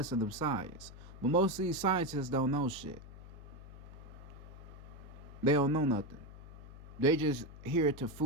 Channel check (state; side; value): noise; left; hum, 15 dB below the sound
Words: of science. But most of these scientists don't know shit. They don't know nothing. They just here to